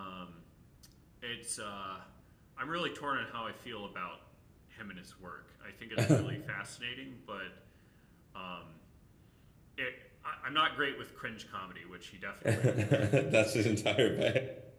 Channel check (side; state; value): both; identical; correlation 1.00